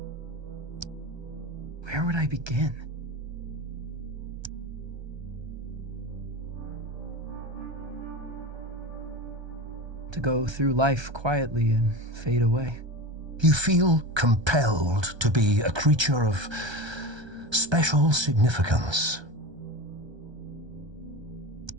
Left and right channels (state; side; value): late; left; 1.3 ms